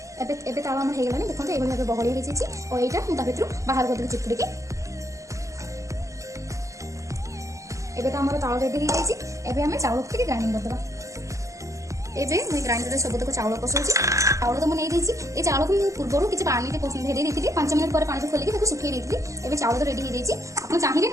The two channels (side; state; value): left; late; 0.16 ms